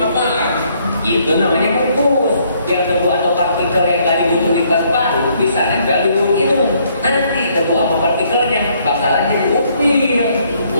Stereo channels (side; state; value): both; inverted; correlation -0.68